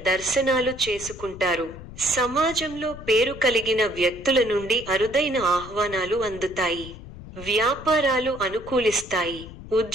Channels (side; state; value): left; noise; rumble, 15 dB below the sound